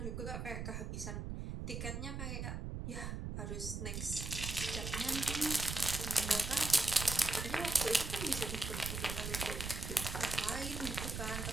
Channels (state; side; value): noise; right; rumble, 4 dB below the sound